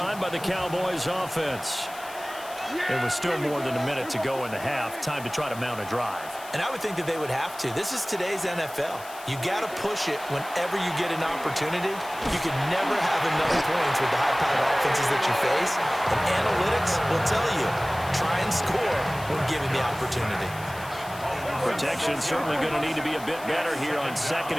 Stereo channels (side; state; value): left; noise; hiss, 17 dB below the sound